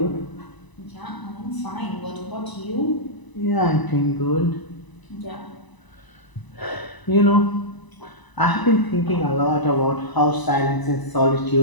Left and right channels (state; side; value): late; right; 1.0 ms